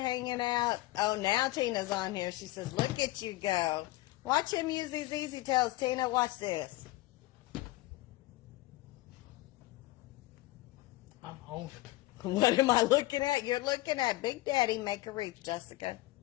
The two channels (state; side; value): quieter; right; 18.5 dB